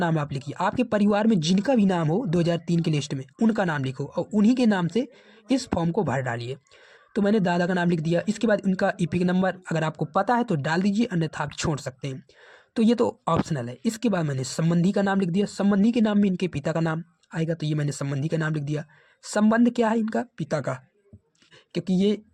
आप लिखिए। आपके परिवार में जिनका भी नाम हो 2003 की लिस्ट में उनका नाम लिखो और उन्हीं के नाम से इस फॉर्म को भर डालिए। तो मैंने दादा का नाम लिख दिया। इसके बाद उनका ईपिक नंबर अगर आपको पता है तो डाल दीजिए, अन्यथा आप छोड़ सकते हैं। तो ये तो ऑप्शनल है। इसके बाद मैंने संबंधी का नाम लिख दिया। संबंधी के नाम में इनके पिता का नाम आएगा, तो ये मैंने संबंधी का नाम लिख दिया। संबंध क्या है इनका, पिता का, क्योंकि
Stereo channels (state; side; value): identical; both; correlation 1.00